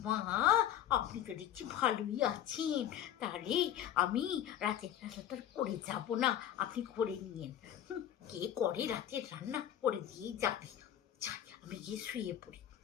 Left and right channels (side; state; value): right; quieter; 10.9 dB